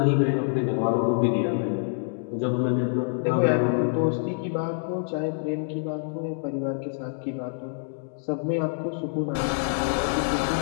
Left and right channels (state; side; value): silent; right; digital silence